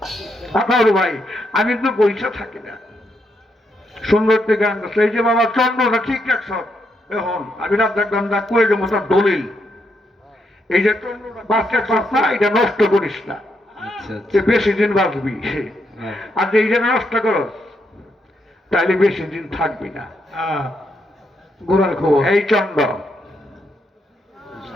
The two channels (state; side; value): normal; both; correlation 0.79